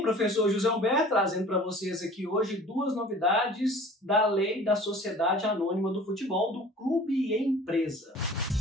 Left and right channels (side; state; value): both; normal; correlation 0.46